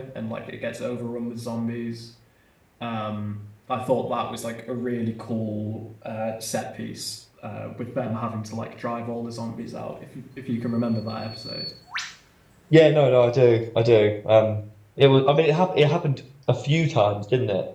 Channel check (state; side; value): identical; both; correlation 1.00